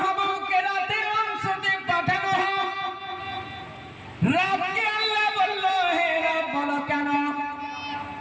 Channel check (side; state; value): both; identical; correlation 1.00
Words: রাতের অংশতে পাঠানো হোক। রাতকে আল্লাহ বলল, হে রব, বলো কেন?